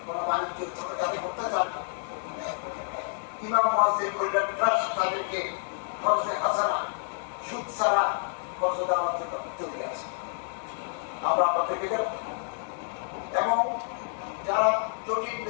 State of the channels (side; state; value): right; silent; 59 dB below the other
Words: কোনো বাণিজ্য ছোটখাটো করতে চান না। ইমাম মুয়াজ্জিন কল্যাণ ট্রাস্ট তাদেরকে খরচে হাসানা সুদ ছাড়া খরচ দেওয়ার জন্য চলে আসে। আমরা আপনাদেরকে দেব এবং যারা জটিল